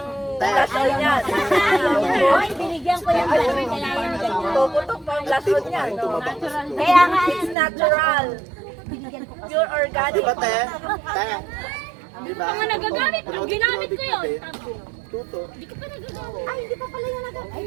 blushon niya. Hoy, binigyan ko yung balaman. Kaya yan ganyan. Tututok pa ang blushon niya, no? Kaya nga, It's natural. binigyan ko kasi. Pure organic. di ba, te? Te? Di ba? Mga nagagamit, ang ginamit ko yun. Tuto. Ay, hindi pa pala yung nagag... Ay,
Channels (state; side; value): drops out; left; at 7.6 s